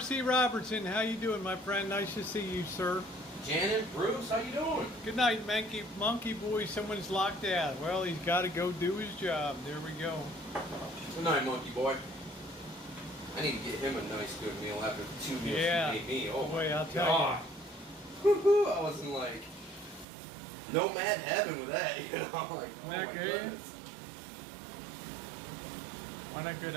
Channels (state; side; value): drops out; left; at 20.1 s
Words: Robertson, how you doing, my friend? Nice to see you, sir. Janet, Bruce, how you doing? Good night, monkey boy. Someone's locked out. Well, he's got to go do his job. There we go. Good night, monkey boy. I need to get him a nice good meal after the 2 meals he made me. Oh boy, my I'll tell God. Woo-hoo, I was in like nomad heaven with that, you know? Like, oh my goodness. Why not good?